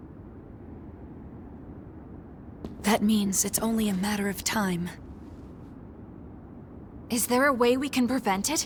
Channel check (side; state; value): both; identical; correlation 1.00